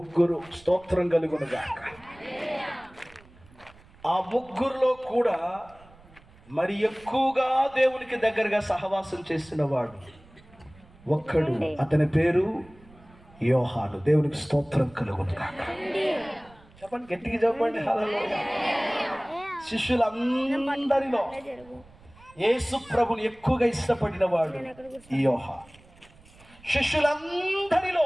స్తోత్రం కలుగునుగాక. ఆ 3లో కూడా మరి ఎక్కువగా దేవునికి దగ్గరగా సహవాసం చేసిన వాడు ఒక్కడు, అతని పేరు యోహాను. దేవునికి స్తోత్రం కలుగునుగాక. చెప్పండి, గట్టిగా చెప్పండి హల్లెలూయా. శిష్యులందరిలో యేసు ప్రభుని ఎక్కువగా ఇష్టపడిన వాడు ఈ యోహాను.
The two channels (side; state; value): right; noise; rumble, 25 dB below the sound